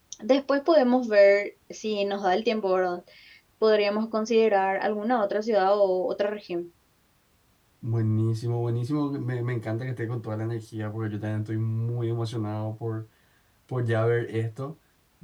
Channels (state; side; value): identical; both; correlation 1.00